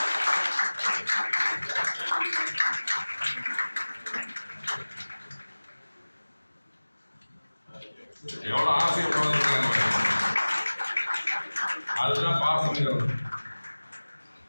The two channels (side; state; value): both; inverted; correlation -1.00